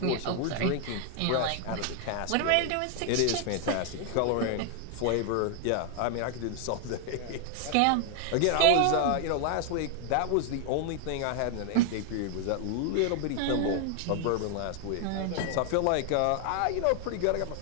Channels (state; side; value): different; both; correlation 0.00